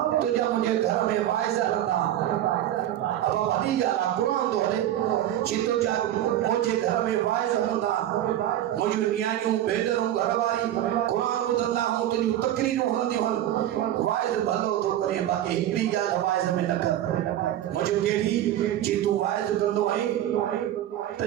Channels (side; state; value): left; quieter; 12.2 dB